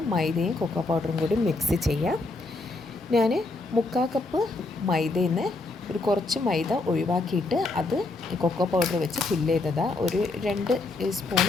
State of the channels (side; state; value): right; quieter; 3.2 dB